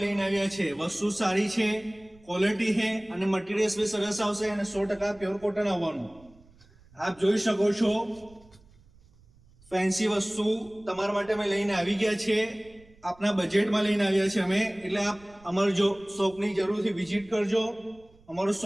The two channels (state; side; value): noise; right; rumble, 27 dB below the sound